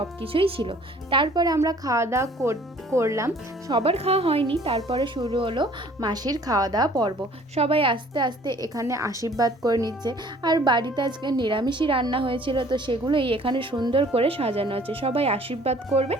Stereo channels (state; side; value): normal; both; correlation 0.54